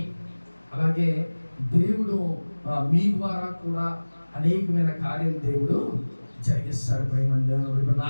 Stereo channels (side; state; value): both; inverted; correlation -1.00